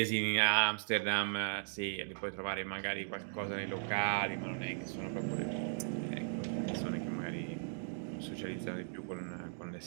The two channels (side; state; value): left; silent; digital silence